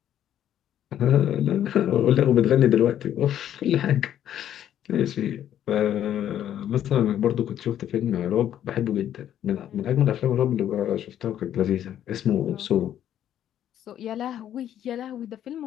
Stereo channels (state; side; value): quieter; right; 10.8 dB